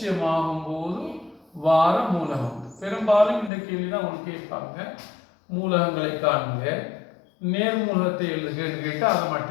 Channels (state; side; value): drops out; right; at 3.5 s